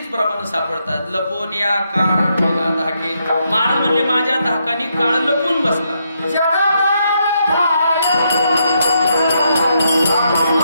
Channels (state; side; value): inverted; both; correlation -0.79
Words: प्रमाण सापडतात. लपून या काळ ठेला धाके. महाराज म्हणले माझ्या धाकानी काळ लपून बसला.